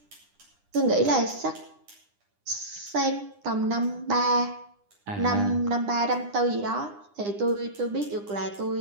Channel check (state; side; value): late; left; 9.9 ms